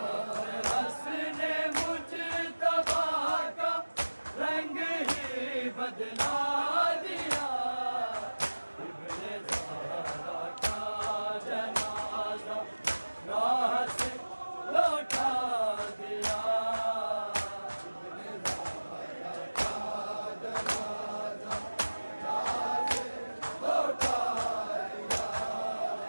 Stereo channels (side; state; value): both; inverted; correlation -1.00